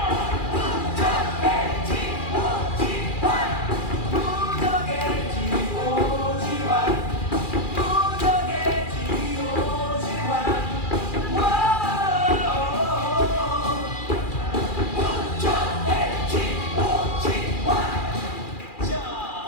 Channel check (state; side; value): late; right; 2.4 ms